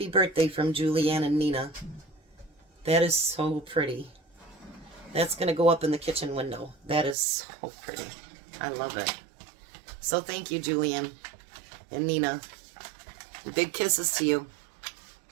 birthday from Julianne and Nina." That is so pretty. That's going to go up in the kitchen window. That is so pretty. I love it. So thank you, Julianne and Nina. Big kisses to you.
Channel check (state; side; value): drops out; left; at 7.2 s